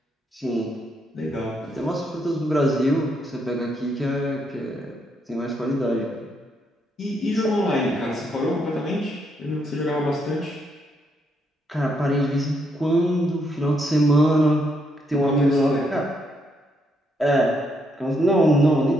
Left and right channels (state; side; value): normal; both; correlation 0.76